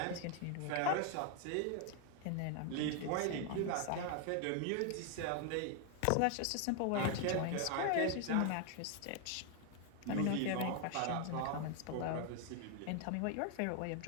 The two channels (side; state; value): both; different; correlation 0.00